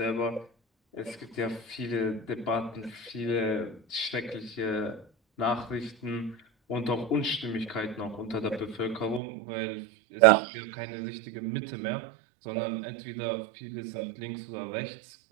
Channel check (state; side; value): drops out; left; at 9.2 s